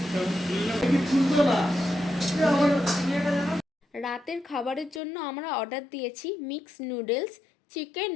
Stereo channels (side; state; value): right; drops out; at 5.0 s